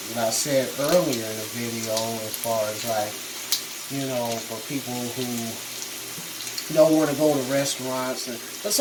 said earlier in the video as far as like, for people who don't want to go to restaurants. But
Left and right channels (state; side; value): identical; both; correlation 1.00